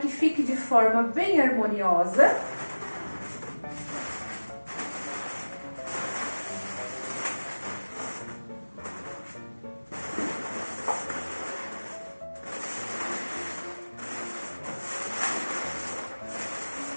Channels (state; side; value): inverted; both; correlation -1.00